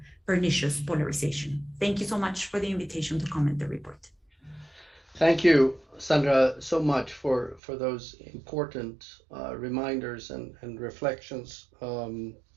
pernicious polarization. Thank you so much for the invitation to comment the report. Thank you, Sandra, so much for those important reminders and reflections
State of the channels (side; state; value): left; drops out; at 7.6 s